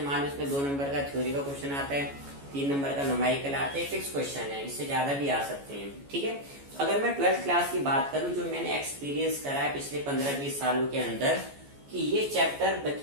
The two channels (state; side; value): late; left; 14 ms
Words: मान लो इसमें 2 नंबर का थ्योरी का क्वेश्चन आता है, 3 नंबर का न्यूमेरिकल आता है, फिक्स क्वेश्चन है, इससे ज्यादा भी आ सकते हैं। ठीक है। अगर मैं 12th क्लास की बात करूं, जो मैंने एक्सपीरियंस करा है पिछले 15-20 सालों के अंदर, कि ये चैप्टर